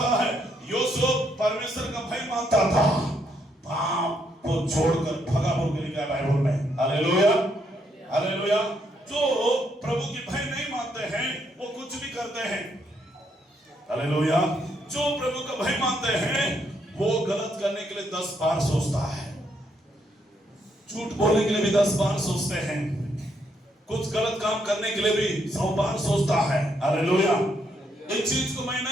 है यूसुफ परमेश्वर का भय मानता था, पाप को छोड़कर भगा बोल के लिखा है बाइबल में। Hallelujah, hallelujah. जो प्रभु की भय नहीं मानते हैं वो कुछ भी करते हैं। हालेलुया। जो प्रभु का भय मानते हैं वो गलत करने के लिए 10 बार सोचता है, झूठ बोलने के लिए भी 10 बार सोचते हैं, कुछ गलत काम करने के लिए भी 100 बार सोचता है। हालेलुया। एक चीज को मैं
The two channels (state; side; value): normal; both; correlation 0.75